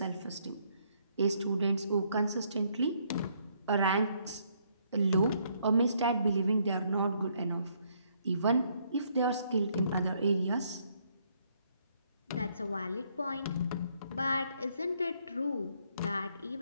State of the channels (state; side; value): inverted; both; correlation -0.70